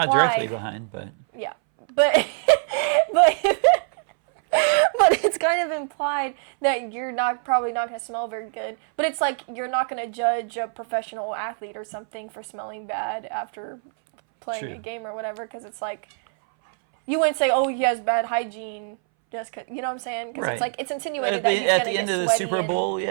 Not directly behind, but Yeah, but but but it's kind of implied that you're probably not going to smell very good. But it's like you're not going to judge a professional athlete or something for smelling bad after playing True. a game or whatever, because it's like you wouldn't say, "Oh, he has bad hygiene," just 'cause, you know what I'm saying? Because Right. it's like it's insinuated at that the, he's at going to the get end of the sweaty Super and- Bowl,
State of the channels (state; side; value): silent; left; 61 dB below the other